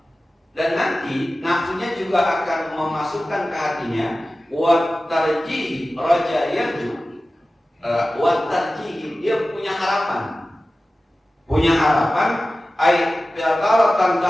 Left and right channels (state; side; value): normal; both; correlation 0.96